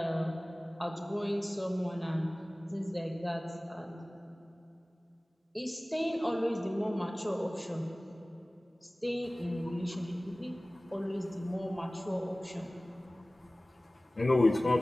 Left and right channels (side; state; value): both; normal; correlation 0.98